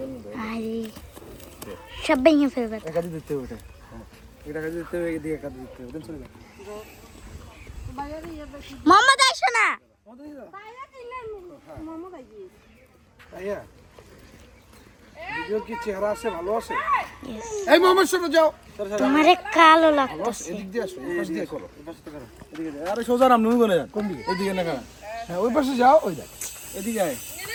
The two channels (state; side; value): identical; both; correlation 1.00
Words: আরে সব ভেঙে ফেলবে একাদি দিতে হবে এটা কাজে দিতে হবে এদিকে কাজে দিতে হবে চলে যাও মোহাম্মদ আইসো না ভাইয়া ভিডিও কি চেহারা আছে ভালো আছে এই মোহাম্মদ শোনো যাও তোমারে কালো লাগতেছে এদিক দিয়ে আসো এই পাশ দিয়ে করো এই পাশে করো এদিকে যাও আরে সোজা নাম নুন গনে যান কোন দিকে এদিকে না কারণ হ্যাঁ ওই পাশে যাও ওই দেখ এদিকে আয়